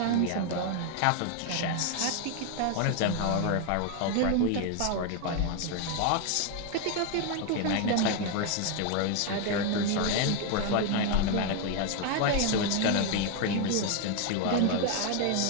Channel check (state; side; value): different; both; correlation 0.01